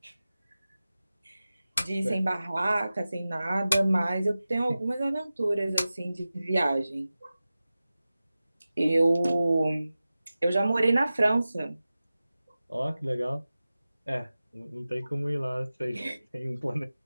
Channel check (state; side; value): inverted; both; correlation -0.96